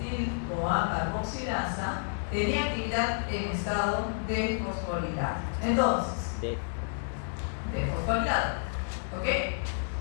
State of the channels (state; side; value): silent; right; digital silence